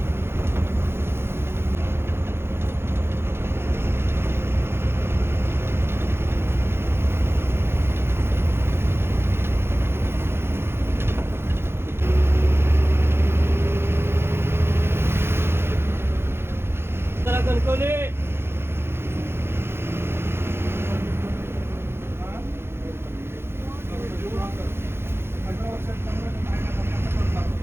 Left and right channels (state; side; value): late; left; 0.12 ms